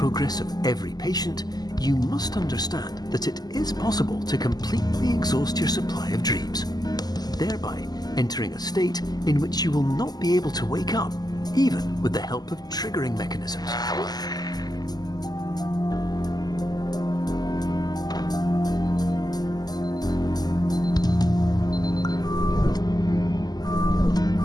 of every patient, you must understand that it is possible to completely exhaust your supply of dreams, thereby entering a state in which you will not be able to wake up, even with the help of triggering mechanisms.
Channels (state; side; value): late; right; 0.20 ms